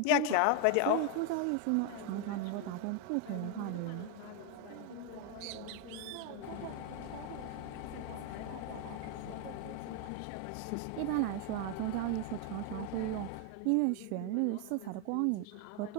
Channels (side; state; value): both; different; correlation 0.01